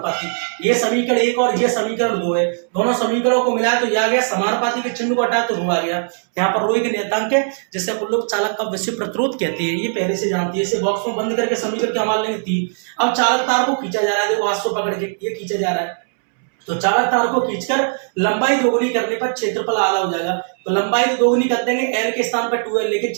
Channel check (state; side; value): silent; left; 66 dB below the other